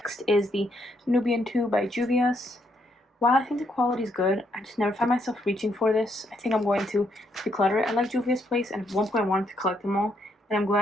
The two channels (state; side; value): normal; both; correlation 0.74